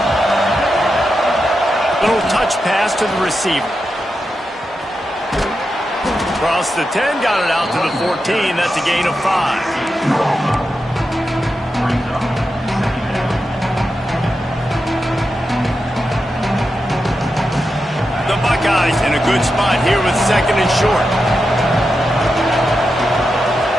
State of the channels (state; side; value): normal; both; correlation 0.88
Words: Little touch pass to the receiver. Across the 10, got it out to the 14. That's a gain of 5. The Buckeyes in a good spot here with 2nd and short.